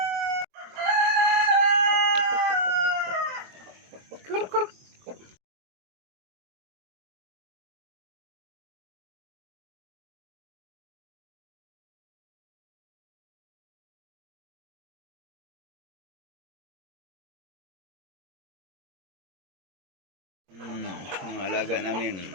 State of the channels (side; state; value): left; late; 22 ms